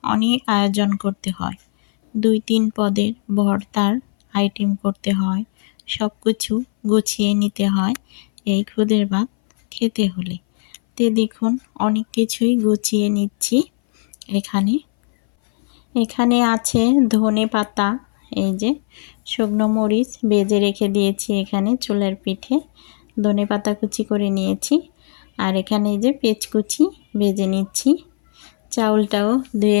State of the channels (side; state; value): right; silent; 62 dB below the other